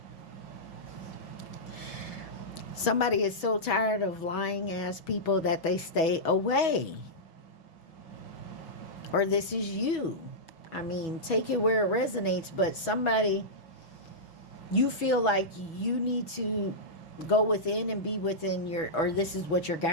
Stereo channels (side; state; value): right; late; 6.1 ms